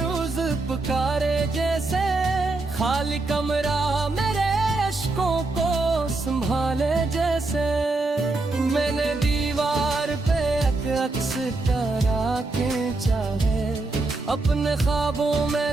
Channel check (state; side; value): quieter; left; 3.2 dB